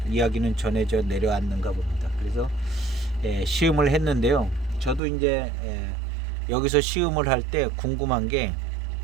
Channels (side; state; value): left; drops out; at 5.0 s